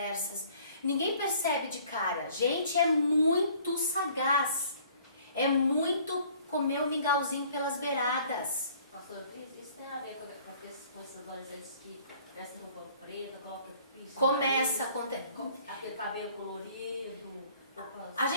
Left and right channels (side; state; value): both; inverted; correlation -0.56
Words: Ninguém percebe de cara. Gente, é muito sagaz. É muito comer o mingauzinho pelas beiradas. Pastor, isso tem a ver quando acontece com esses adolescentes que vestem roupa preta, colocam piso. Começa a acontecer. Aquele cabelo colorido. A